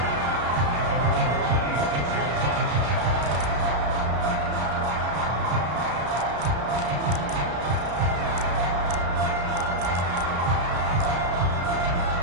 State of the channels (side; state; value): left; late; 33 ms